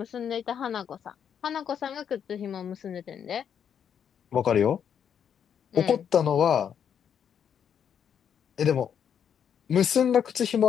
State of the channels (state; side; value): quieter; right; 8.3 dB